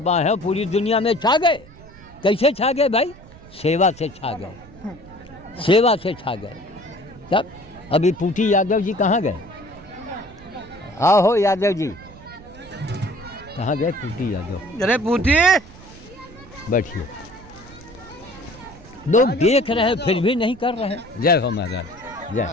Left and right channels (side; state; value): right; noise; rumble, 20 dB below the sound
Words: हैं, पूरी दुनिया में छा गए। कैसे छा गए भाई? सेवा से छा गए, सेवा से छा गए। तब अभी पूटी यादव जी कहाँ गए? आओ हो यादव जी, कहाँ गए पूटी यादव? अरे पूटी, बैठिए। लोग देख रहे हैं फिर भी नहीं कर रहे हैं। जय हो महाराज, जय